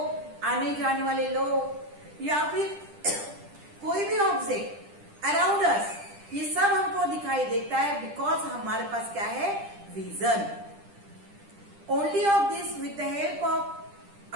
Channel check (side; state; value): left; late; 10 ms